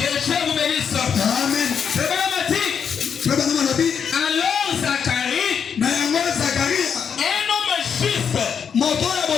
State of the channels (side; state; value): right; quieter; 7.1 dB